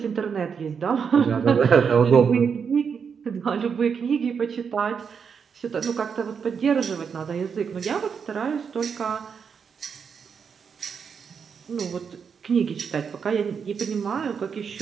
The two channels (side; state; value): left; quieter; 6.5 dB